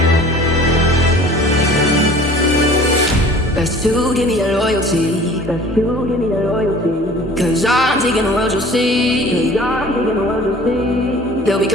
Best to give me that loyalty. Best to give me that loyalty. Cause I'm taking the world, you'll see. Cause I'm taking the world, you'll see. They'll be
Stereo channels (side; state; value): both; normal; correlation 0.47